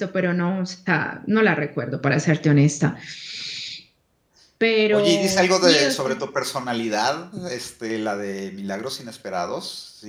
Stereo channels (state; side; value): identical; both; correlation 1.00